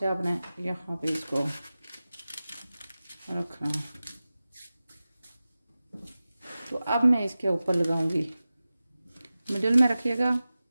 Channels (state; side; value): inverted; both; correlation -0.96